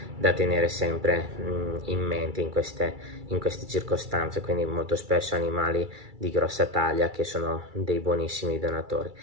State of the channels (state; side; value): late; left; 2.3 ms